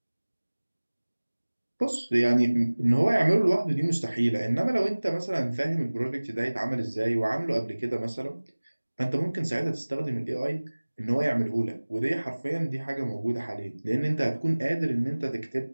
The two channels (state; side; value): inverted; both; correlation -1.00